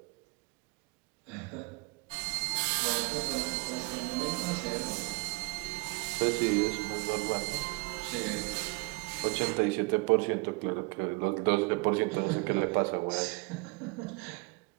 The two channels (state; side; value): quieter; left; 29.5 dB